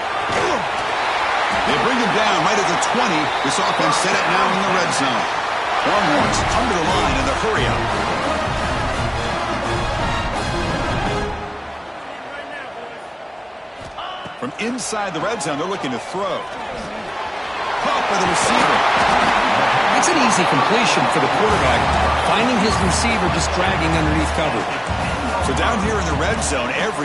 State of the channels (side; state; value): both; identical; correlation 1.00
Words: They bring him down right at the 20. This offense set it now in the red zone. Longhorns come to the line in the hurry-up. From inside the red zone, they're looking to throw. Caught by the receiver. It's an easy completion for the quarterback, finding his receiver just dragging underneath cover. So down here in the red zone,